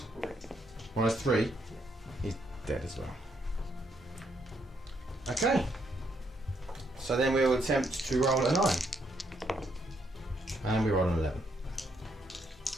-3. He's dead as well. Okay. So then we will attempt to roll a 9. And we roll an 11.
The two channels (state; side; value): normal; both; correlation 0.75